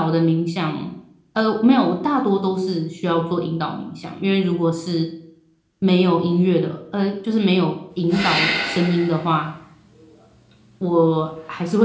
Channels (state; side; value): identical; both; correlation 1.00